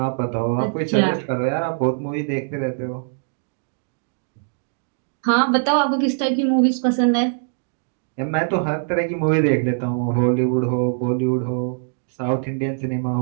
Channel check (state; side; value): silent; left; digital silence